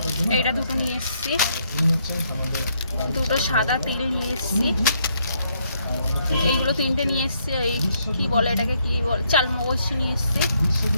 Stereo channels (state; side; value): inverted; both; correlation -0.72